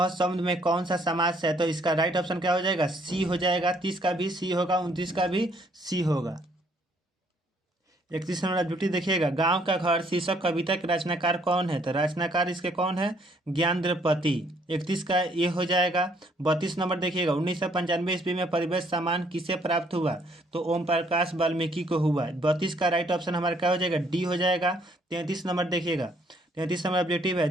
शब्द में कौन सा समास है? तो इसका राइट ऑप्शन क्या हो जाएगा? सी हो जाएगा। 30 का भी सी होगा, 29 का भी सी होगा। 31 नंबर ड्यूटी देखिएगा। गांव का घर शीर्षक कविता के रचनाकार कौन है? तो रचनाकार इसके कौन है? ज्ञानद्रपति। 31 का ये हो जाएगा। 32 नंबर देखिएगा। 1995 ईस्वी में परिवेश सम्मान किसे प्राप्त हुआ? तो ओम प्रकाश वाल्मीकि को हुआ। 32 का राइट ऑप्शन हमारा क्या हो जाएगा? डी हो जाएगा। 33 नंबर देखिएगा। 33 नंबर ऑब्जेक्टिव है।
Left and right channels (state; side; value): normal; both; correlation 0.65